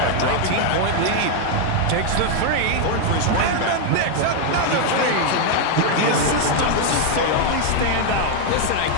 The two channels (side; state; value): both; different; correlation 0.01